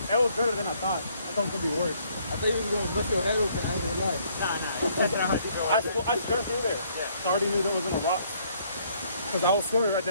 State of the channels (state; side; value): inverted; both; correlation -0.65